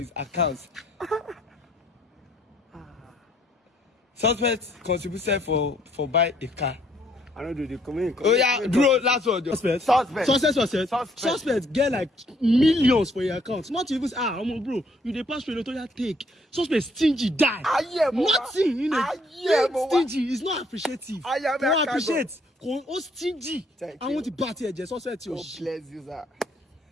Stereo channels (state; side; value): normal; both; correlation 0.66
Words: accounts. Suspect contributed for buy a car. I don't do the comment. Oh yeah, bro, last one. Suspect get like millions for your account. Not even bro, you dey pass through the take. Suspect stingy die. Nothing, stingy is not appreciative. Don't appreciate. Oh stingy. I want to party here. Suspect. God bless you, sir.